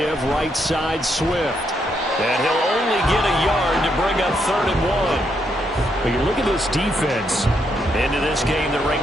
right side Swift. And he'll only get a yard to bring up 3rd and 1. But you look at this defense. Into this game, they're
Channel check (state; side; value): normal; both; correlation 0.77